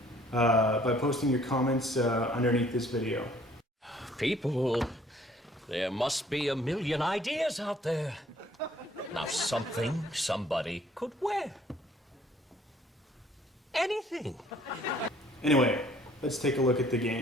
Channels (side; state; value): both; normal; correlation 0.59